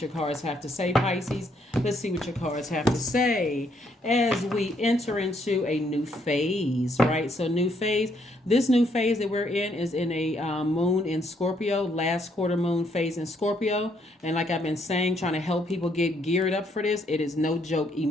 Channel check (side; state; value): both; normal; correlation 0.71